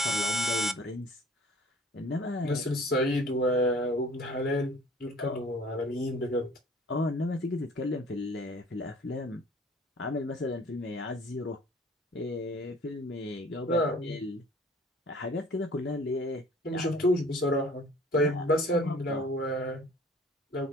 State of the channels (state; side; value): normal; both; correlation 0.50